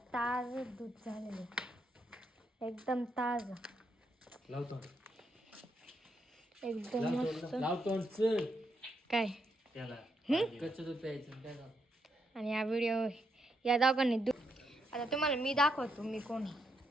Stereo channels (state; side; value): normal; both; correlation 0.79